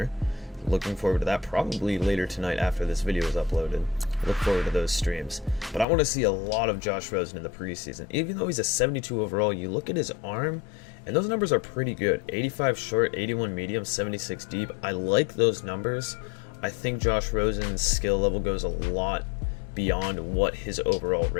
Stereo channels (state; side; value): drops out; right; at 5.9 s